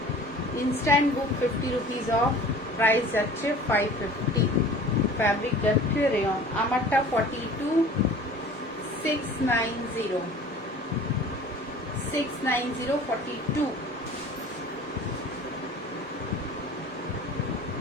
instant book 50 rupees off, price যাচ্ছে 550, ফ্যাব্রিক যাচ্ছে রেয়ন, আমারটা 42 690 42।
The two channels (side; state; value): both; normal; correlation 0.44